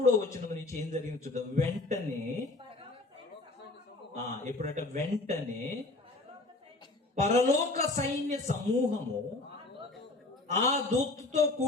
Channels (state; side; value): quieter; right; 3.0 dB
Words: వచనం నుంచి ఏం జరిగింది చూద్దాం. వెంటనే ఎప్పుడంటే వెంటనే పరలోక సైన్య సమూహము ఆ దూతతో